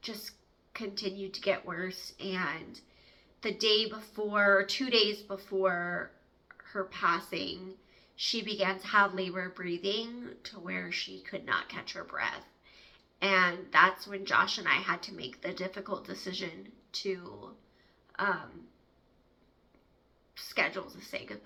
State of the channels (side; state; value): both; identical; correlation 1.00